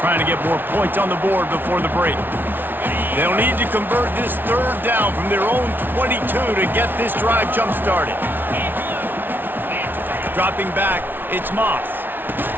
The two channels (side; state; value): left; late; 0.096 ms